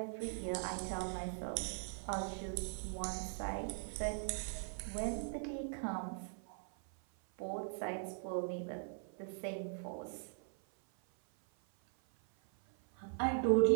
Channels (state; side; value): silent; left; 51 dB below the other